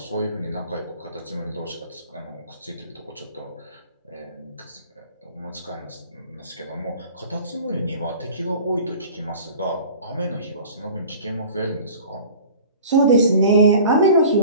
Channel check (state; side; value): inverted; both; correlation -0.44